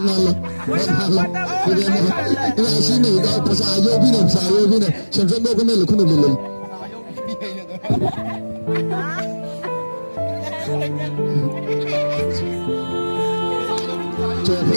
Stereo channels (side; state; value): both; inverted; correlation -1.00